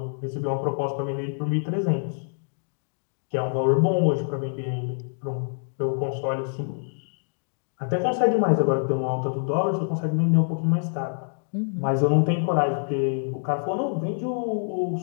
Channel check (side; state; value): right; silent; digital silence